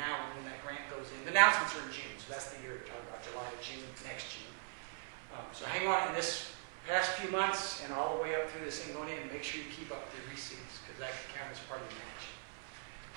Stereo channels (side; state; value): left; silent; 51 dB below the other